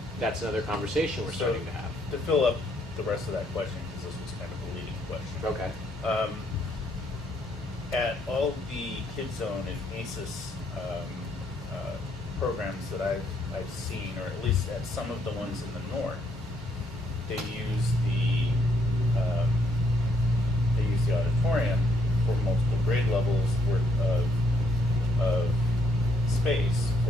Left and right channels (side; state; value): both; normal; correlation 0.72